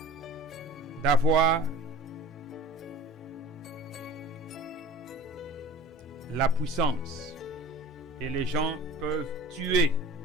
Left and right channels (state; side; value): normal; both; correlation 0.41